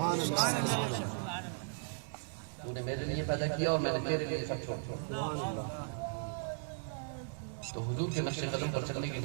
تو نے میرے لیے پیدا کیا اور میں نے تیرے لیے سب چھوڑ دیا. تو حضور کے نقش قدم پر چلنے کے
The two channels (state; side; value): silent; left; digital silence